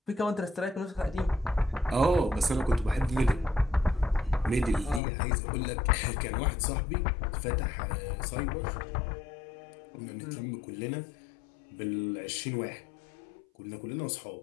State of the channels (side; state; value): right; drops out; at 5.0 s